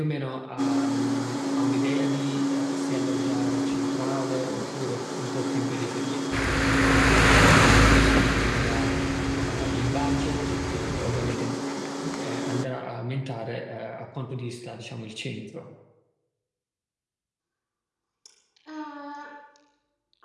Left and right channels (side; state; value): both; identical; correlation 1.00